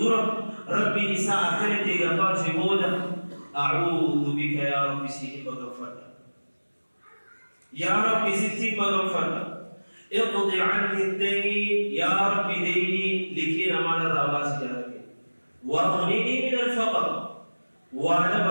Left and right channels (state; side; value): inverted; both; correlation -1.00